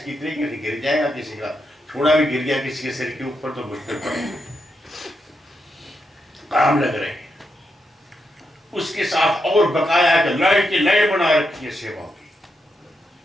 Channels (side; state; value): both; normal; correlation 0.83